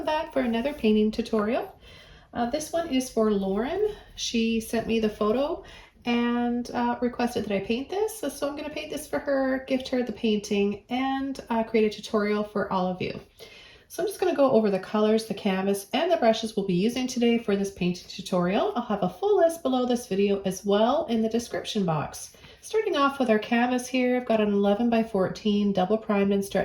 back for another painting tutorial. This one is for Lauren. She sent me the photo and requested that I paint this. So I'm going to paint this for her, gift her the painting, and create a tutorial for all of you. So I'm just going to go over the colors, the canvas, and the brushes we'll be using today for this painting tutorial. I'll have a full list below this video as well in the description box. Starting off with our canvas here, I've got an 11 by 14 double primed and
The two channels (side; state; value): both; identical; correlation 1.00